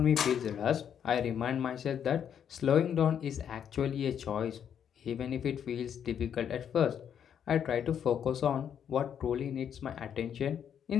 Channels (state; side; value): quieter; right; 8.6 dB